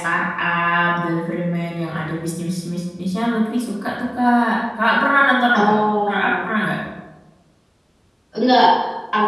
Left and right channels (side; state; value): both; identical; correlation 1.00